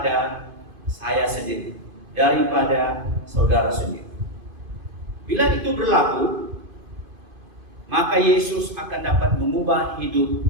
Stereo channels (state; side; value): late; left; 2.5 ms